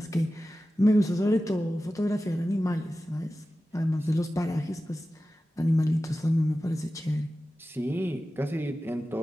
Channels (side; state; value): both; normal; correlation 0.94